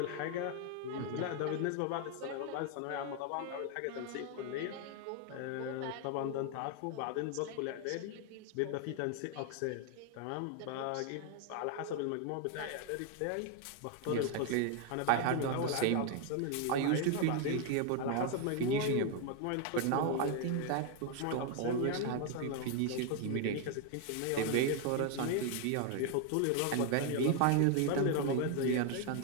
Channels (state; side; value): different; both; correlation 0.00